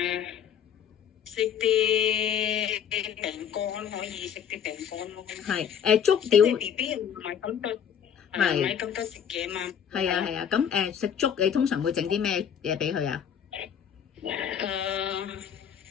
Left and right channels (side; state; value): right; quieter; 8.4 dB